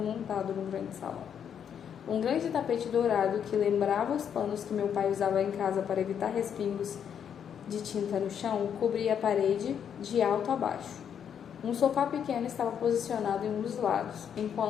num grande salão. Um grande tapete dourado que lembrava os panos que meu pai usava em casa para evitar respingos de tinta no chão cobria a parede de alto a baixo. Um sofá pequeno estava posicionado em um dos lados,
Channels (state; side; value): quieter; right; 8.3 dB